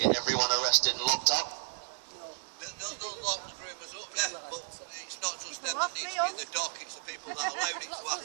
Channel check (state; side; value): silent; left; digital silence